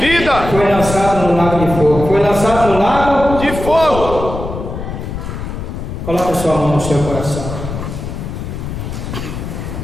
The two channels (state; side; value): noise; left; rumble, 7 dB below the sound